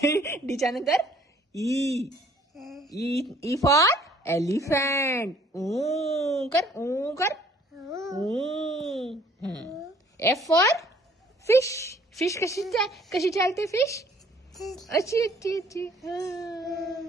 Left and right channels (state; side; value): normal; both; correlation 0.58